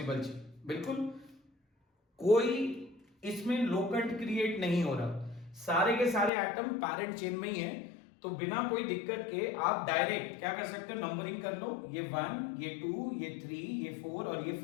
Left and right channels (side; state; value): right; drops out; at 6.3 s